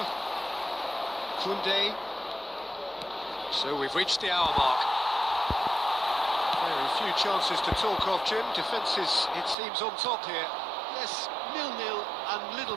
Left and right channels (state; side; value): drops out; left; at 9.6 s